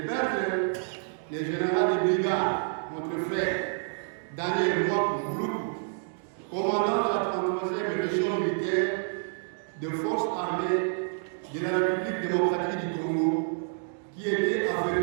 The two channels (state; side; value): silent; left; digital silence